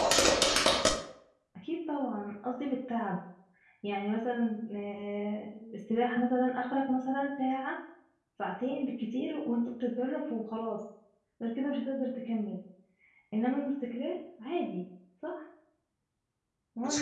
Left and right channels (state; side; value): identical; both; correlation 1.00